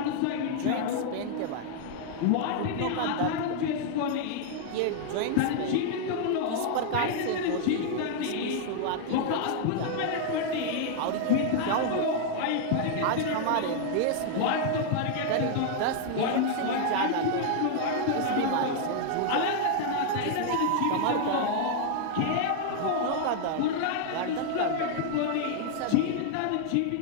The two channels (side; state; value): both; different; correlation 0.00